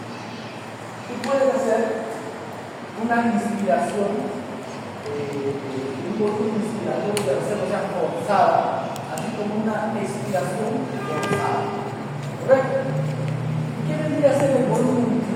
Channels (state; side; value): identical; both; correlation 1.00